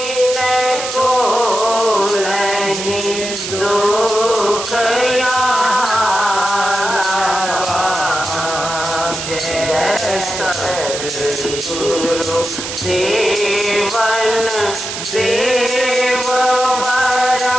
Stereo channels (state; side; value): noise; right; hiss, 6 dB below the sound